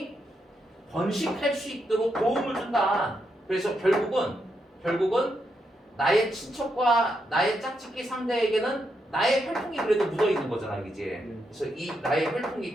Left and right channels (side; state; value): both; normal; correlation 0.81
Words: 번식할 수 있도록 도움을 준다. 그래서 결국은 나의 친척과 나의 짝짓기 상대에게는 나의 혈통이 그래도 묻어 있는 거잖아, 그지? 그래서 이 나의